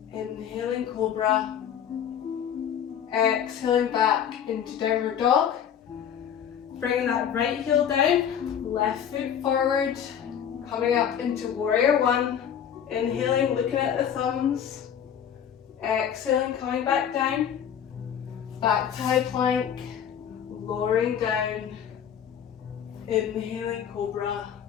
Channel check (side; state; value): right; quieter; 8.8 dB